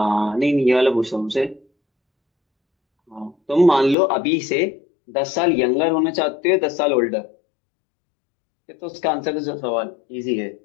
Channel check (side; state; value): right; drops out; at 4.0 s